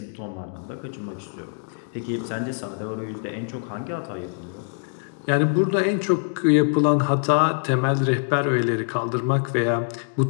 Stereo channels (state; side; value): silent; right; digital silence